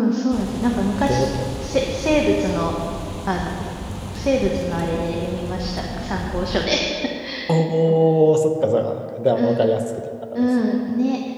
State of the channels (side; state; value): both; identical; correlation 1.00